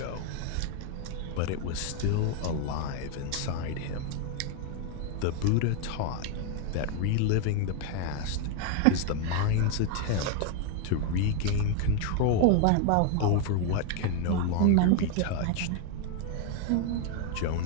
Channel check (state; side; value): different; both; correlation 0.01